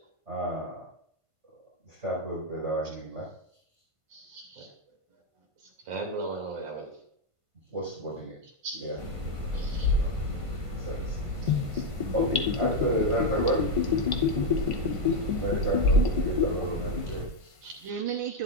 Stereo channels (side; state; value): left; late; 1.5 ms